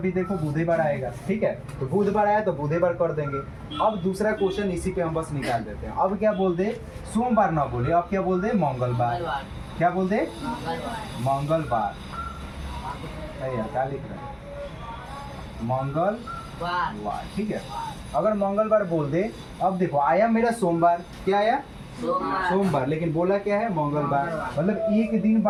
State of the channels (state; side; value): identical; both; correlation 1.00